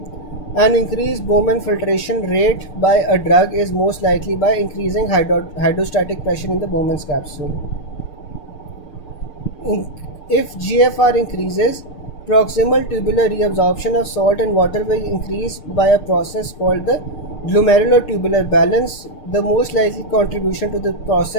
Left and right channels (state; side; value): late; right; 6.7 ms